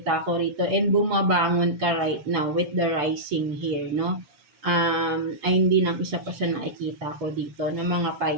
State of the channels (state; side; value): late; left; 6.9 ms